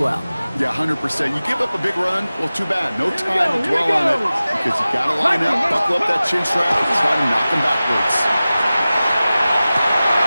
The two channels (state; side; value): inverted; both; correlation -0.96